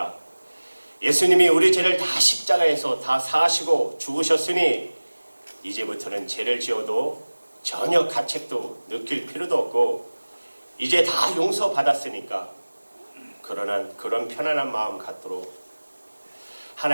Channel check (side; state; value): both; inverted; correlation -1.00